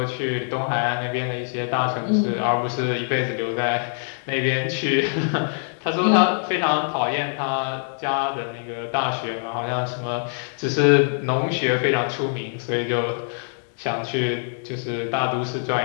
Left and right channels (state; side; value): silent; right; 63 dB below the other